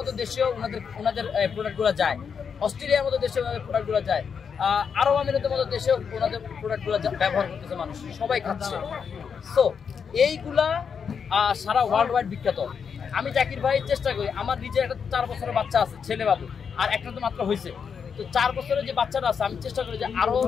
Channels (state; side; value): quieter; right; 6.5 dB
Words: দেশেও ওনাদের প্রোডাক্টগুলো যায়, অস্ট্রেলিয়ার মতো দেশেও ওনাদের প্রোডাক্টগুলো যায়, আরব আমিরাতের মতো দেশেও ওনাদের প্রোডাক্টগুলো ব্যবহার করতেছে মানুষ, সবাই খাচ্ছে। সো এইগুলা সারা ওয়ার্ল্ড ওয়াইড বিখ্যাত। আমি জাকির ভাই চেষ্টা করি, আমার নিজের একটা 4 বছরের বাচ্চা আছে, ছেলে বাবু, আর একটা তো মাত্র হয়েছে। তো 4 বছরের যে বাচ্চাটা আছে, আমি চেষ্টা করি যে আরো